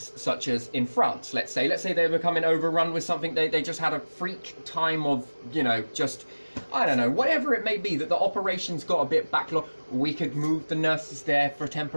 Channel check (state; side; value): inverted; both; correlation -1.00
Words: such as in France, let's say they were becoming overrun with something, they just had a freak time of, you know, just, I don't know, whatever it may be, that the operations got a bit backlogged, we could move the nurses there for